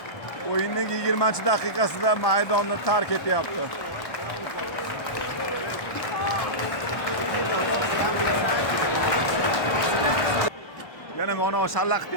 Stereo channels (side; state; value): right; late; 1.1 ms